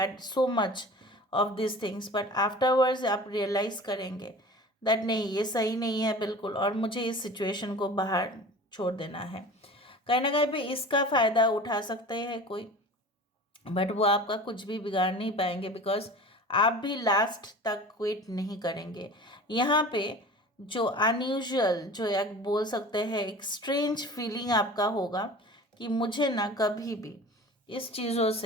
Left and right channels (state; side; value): normal; both; correlation 0.39